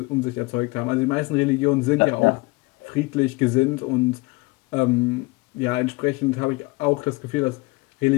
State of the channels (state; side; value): quieter; right; 24.2 dB